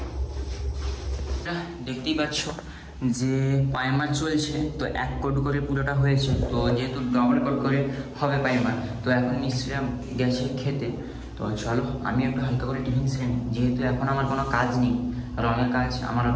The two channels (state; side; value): identical; both; correlation 1.00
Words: দেখতেই পাচ্ছ যে পাইমার চলছে। তো 1 কোট করে পুরোটা হয়েছে। তো যেহেতু ডবল কোট করে হবে পাইমার, তো এখন মিস্ত্রিরা গেছে খেতে। তো চলো আমি একটু হালকা করে টিফিন সেরে নিই, যেহেতু এখন আমার কোনো কাজ নেই। রঙের কাজ আমার